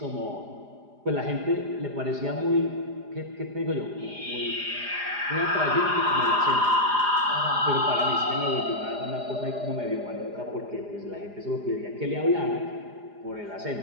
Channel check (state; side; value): late; left; 4.9 ms